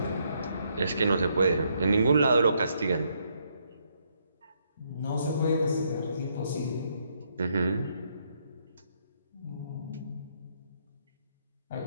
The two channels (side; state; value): both; inverted; correlation -0.74